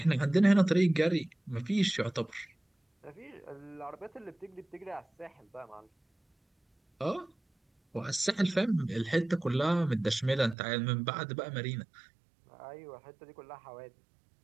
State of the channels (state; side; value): drops out; left; at 10.6 s